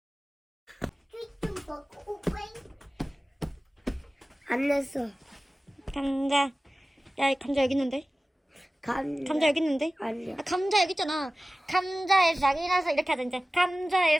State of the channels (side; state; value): both; normal; correlation 0.97